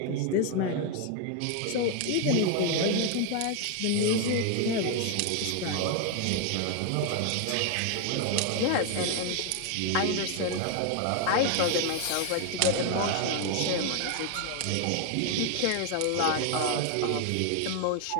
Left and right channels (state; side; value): different; both; correlation 0.01